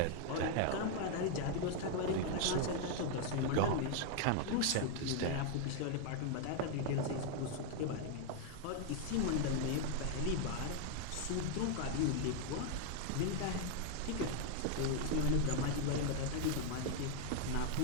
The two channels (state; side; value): different; both; correlation 0.00